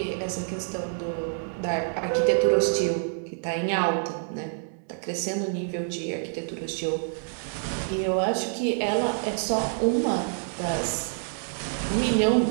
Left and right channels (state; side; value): silent; left; 60 dB below the other